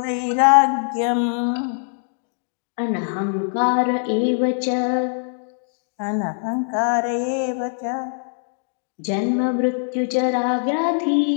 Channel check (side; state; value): right; silent; digital silence